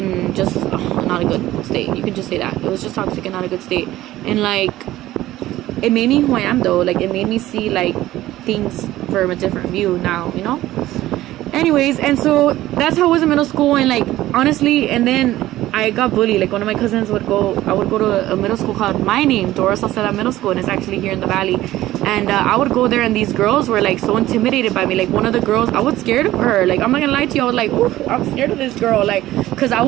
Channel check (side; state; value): left; quieter; 15.3 dB